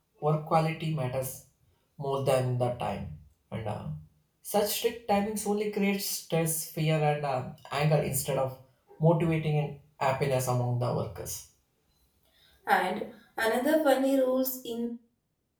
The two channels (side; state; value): both; identical; correlation 1.00